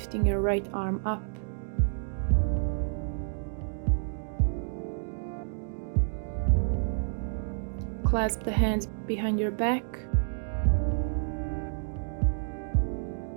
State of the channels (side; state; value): left; silent; digital silence